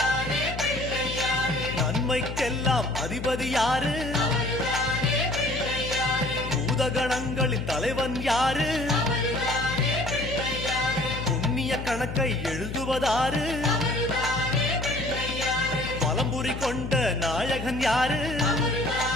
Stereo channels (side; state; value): left; noise; hum, 7 dB below the sound